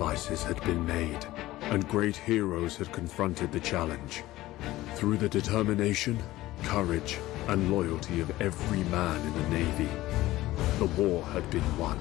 had been made, and great heroes had confronted the challenge. Through the determination, courage, and loyalty of every man in the Navy, the war had been won.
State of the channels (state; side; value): quieter; right; 16.8 dB